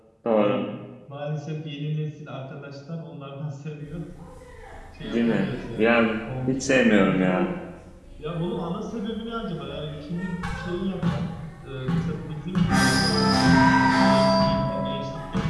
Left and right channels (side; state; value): both; identical; correlation 1.00